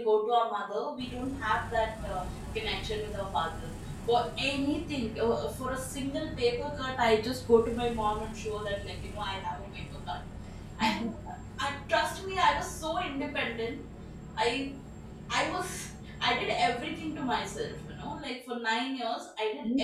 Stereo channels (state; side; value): identical; both; correlation 1.00